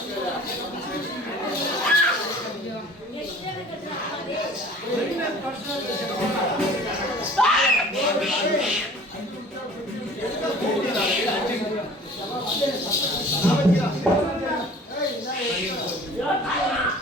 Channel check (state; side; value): normal; both; correlation 0.47